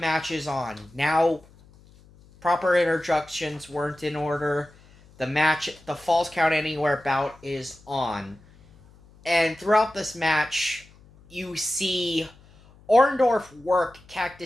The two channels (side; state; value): left; noise; hum, 26 dB below the sound